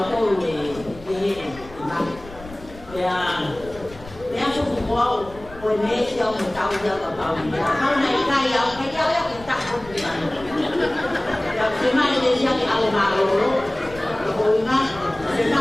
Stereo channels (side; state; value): left; noise; rumble, 18 dB below the sound